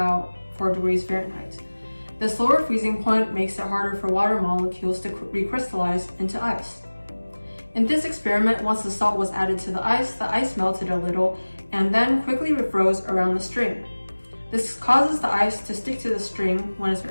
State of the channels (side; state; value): both; inverted; correlation -1.00